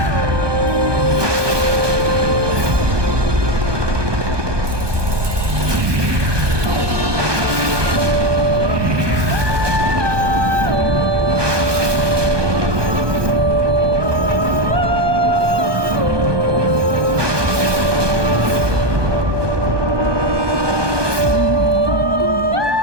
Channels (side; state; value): left; late; 1.2 ms